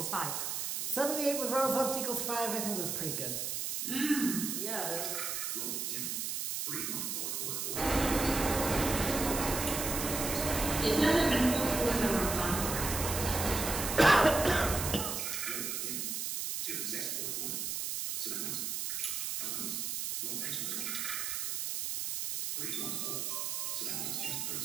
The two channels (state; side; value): noise; right; hiss, 2 dB below the sound